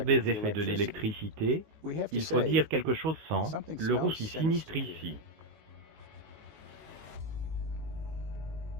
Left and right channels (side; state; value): left; late; 19 ms